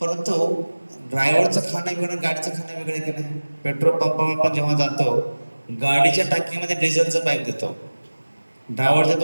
ड्रायव्हरचं खाणं वेगळं, गाडीचं खाणं वेगळं की नाही? पेट्रोल पंपावर आपण जेव्हा जातो, गाडीच्या टाकीमध्ये डिझेलचं पाईप देतो, ड्रायव्हरच्या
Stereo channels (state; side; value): inverted; both; correlation -1.00